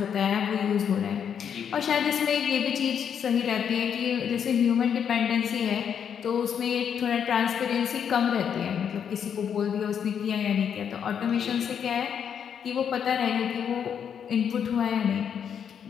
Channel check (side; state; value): right; quieter; 8.0 dB